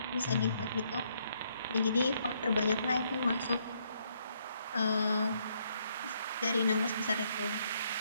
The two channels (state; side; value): inverted; both; correlation -0.72